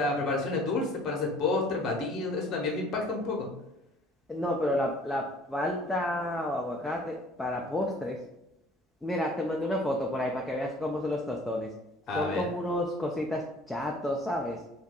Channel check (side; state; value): both; normal; correlation 0.52